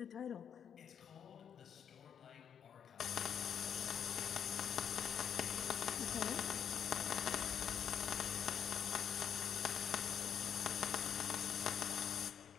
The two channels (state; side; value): quieter; right; 8.2 dB